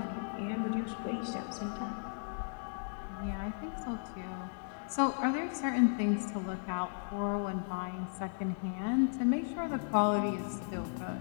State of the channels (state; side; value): silent; right; digital silence